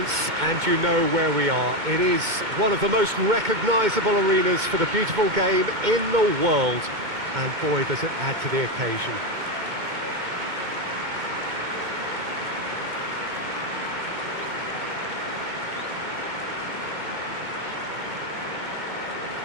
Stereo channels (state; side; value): late; left; 2.2 ms